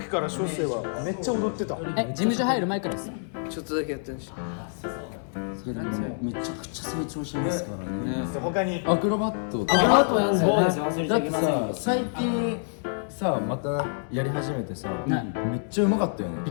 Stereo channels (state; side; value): silent; right; 60 dB below the other